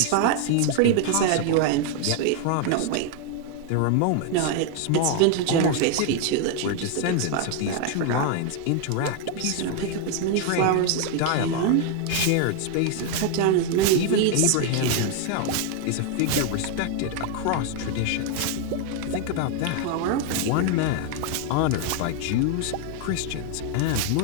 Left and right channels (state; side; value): different; both; correlation 0.01